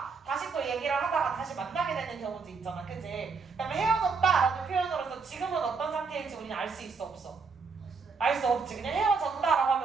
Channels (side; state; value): left; quieter; 4.8 dB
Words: 다시 또 얘기를 하다가 다시 만나게 되는 경우도 있잖아. 그치? 그다음에 헤어졌다라는 표현으로서 지금은 어떤 상태일지 우리는 알 수 있어 없어? 알 수 없지. 그냥 헤어졌다라고